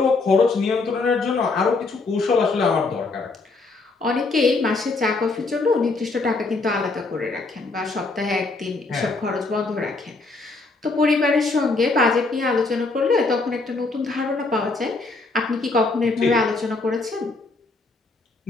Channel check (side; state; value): right; quieter; 3.6 dB